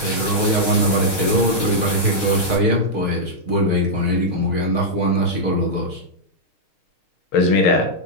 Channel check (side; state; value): right; late; 6.4 ms